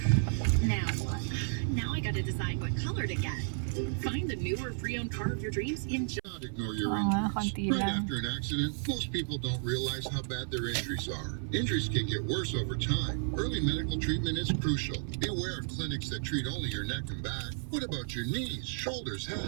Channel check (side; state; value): left; silent; 56 dB below the other